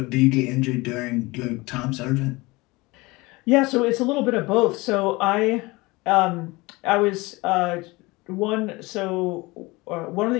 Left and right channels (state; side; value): quieter; right; 22.9 dB